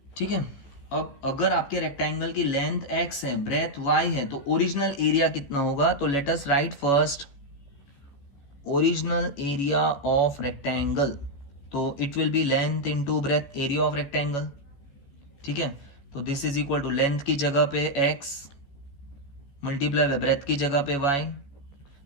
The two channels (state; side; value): late; right; 15 ms